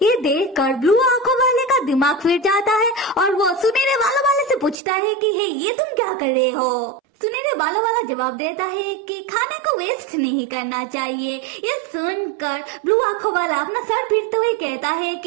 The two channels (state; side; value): drops out; left; at 4.8 s